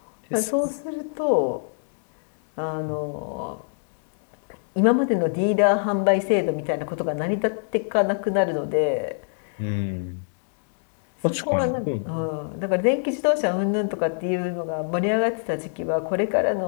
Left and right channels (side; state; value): right; silent; digital silence